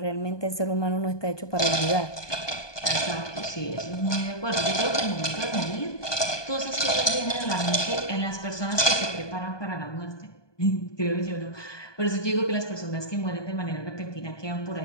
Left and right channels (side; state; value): right; late; 1.2 ms